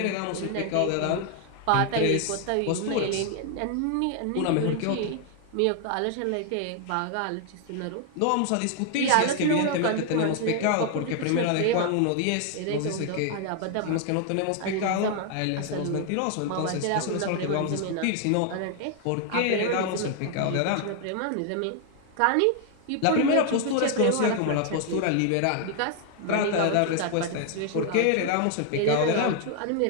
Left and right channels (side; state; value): both; different; correlation 0.00